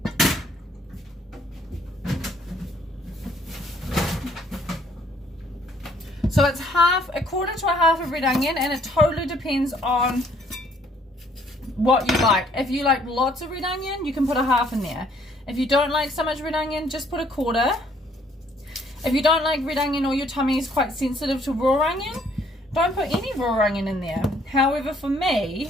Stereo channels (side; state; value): both; normal; correlation 0.63